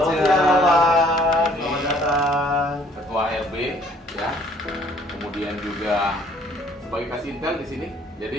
siang. Selamat datang. Ketua RB ya. Kemudian juga sebagai kasih intel di sini.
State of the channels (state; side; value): normal; both; correlation 0.60